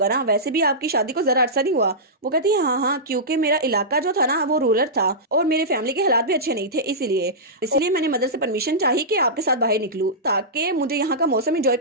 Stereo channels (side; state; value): both; normal; correlation -0.15